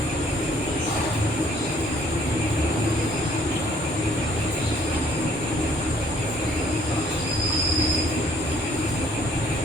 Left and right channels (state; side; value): normal; both; correlation 0.61